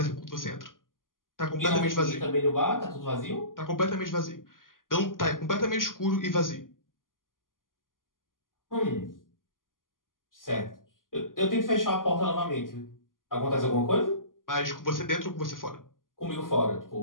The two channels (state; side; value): late; right; 0.90 ms